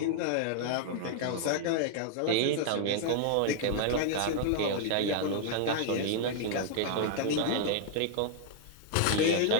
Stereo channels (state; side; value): different; both; correlation 0.00